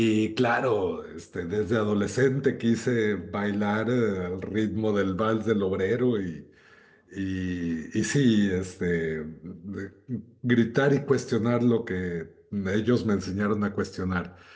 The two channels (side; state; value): both; identical; correlation 1.00